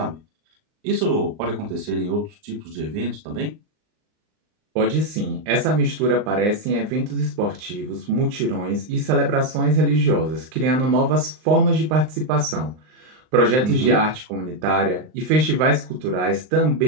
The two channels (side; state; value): left; late; 39 ms